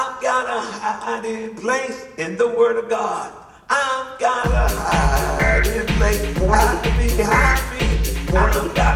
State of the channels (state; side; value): identical; both; correlation 1.00